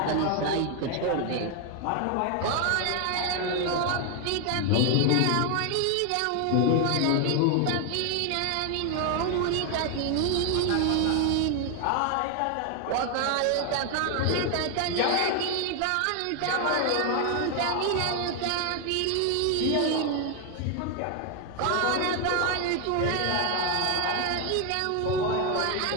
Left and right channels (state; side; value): different; both; correlation 0.01